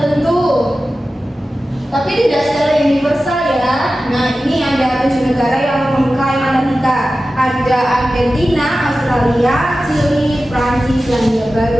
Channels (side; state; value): both; normal; correlation 0.94